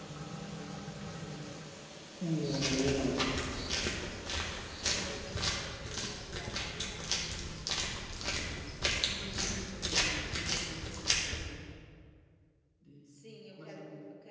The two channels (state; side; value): identical; both; correlation 1.00